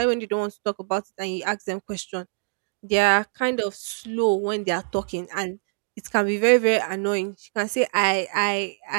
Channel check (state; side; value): silent; left; digital silence